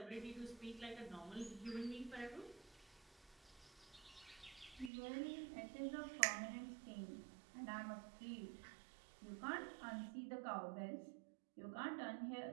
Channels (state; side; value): drops out; left; at 4.9 s